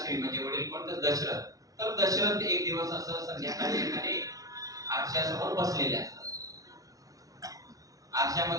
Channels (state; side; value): late; left; 0.17 ms